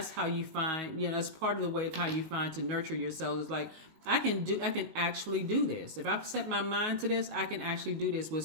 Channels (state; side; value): late; left; 19 ms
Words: how you find, that's part of the way of how you find to nurture yourself. Is like, I can actually do this. If I set my mind to this, I can actually do this. With